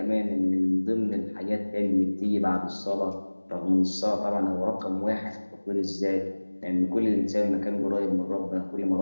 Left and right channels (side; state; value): both; inverted; correlation -1.00